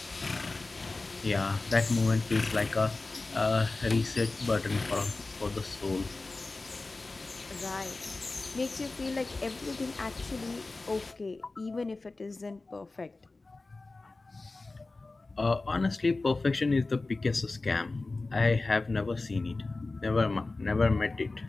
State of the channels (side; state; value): right; quieter; 3.4 dB